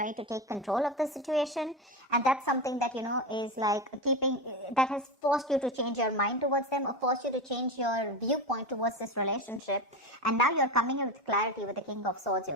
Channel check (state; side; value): normal; both; correlation 0.20